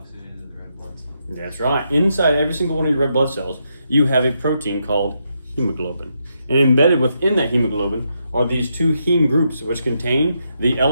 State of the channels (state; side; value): inverted; both; correlation -0.81